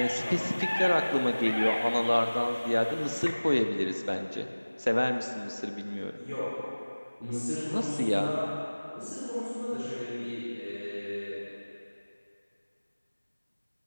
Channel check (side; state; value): both; inverted; correlation -1.00